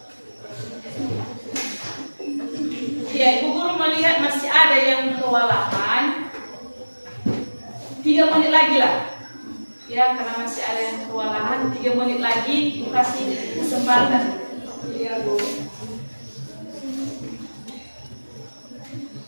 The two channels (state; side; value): inverted; both; correlation -1.00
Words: Ya, Ibu Guru melihat masih ada yang kewalahan. 3 menit lagi lah. Ya, karena masih ada yang kewalahan, 3 menit lagi Ibu kasih kesempatan. Iya, Bu.